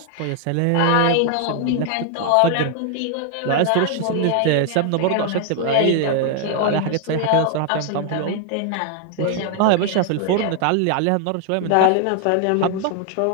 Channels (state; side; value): different; both; correlation 0.00